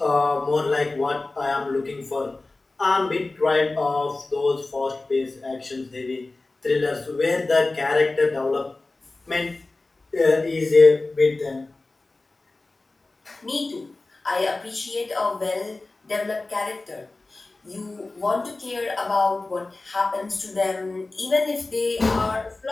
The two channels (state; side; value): quieter; right; 3.2 dB